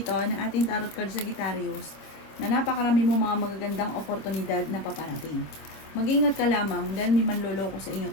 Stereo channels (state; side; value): late; right; 26 ms